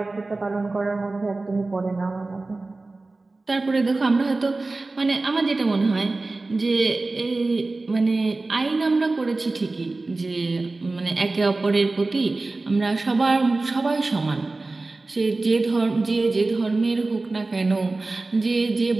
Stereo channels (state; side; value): quieter; left; 3.3 dB